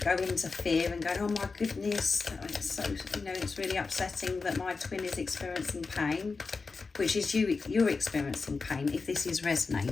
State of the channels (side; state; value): right; quieter; 4.4 dB